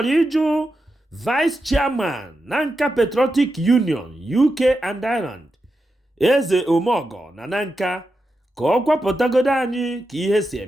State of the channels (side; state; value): both; normal; correlation 0.88